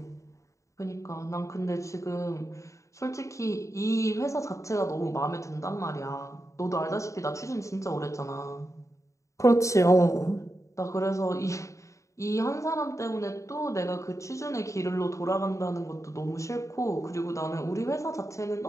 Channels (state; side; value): late; right; 0.15 ms